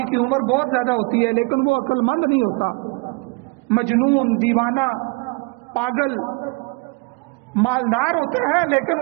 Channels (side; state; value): left; quieter; 29.5 dB